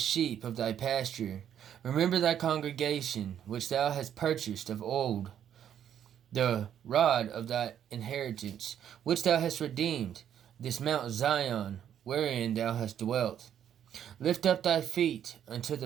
of thy pasture? Remember thy congregation, which thou hast purchased of old, the rod of thy inheritance, which thou hast redeemed, this Mount Zion, wherein thou hast dwelt. Lift up thy feet unto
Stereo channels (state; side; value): quieter; left; 9.7 dB